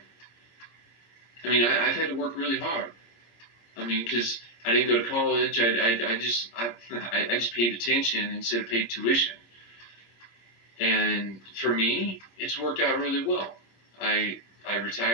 I mean, I've had to work really hard. I mean, because I didn't go to college. I just paid attention instead of paid tuition. And for me, it's worked out really well. I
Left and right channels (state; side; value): late; right; 26 ms